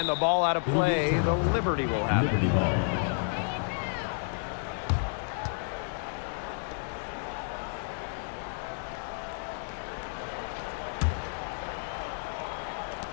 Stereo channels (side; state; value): right; silent; digital silence